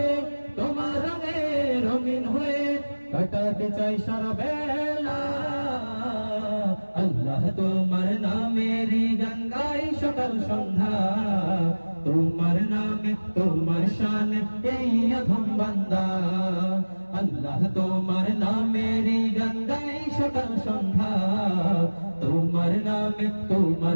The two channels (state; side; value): inverted; both; correlation -1.00